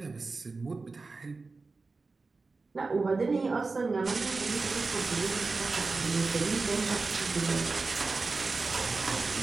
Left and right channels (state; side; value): quieter; left; 3.9 dB